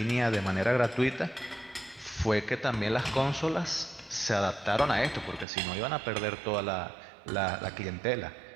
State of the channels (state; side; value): drops out; left; at 5.5 s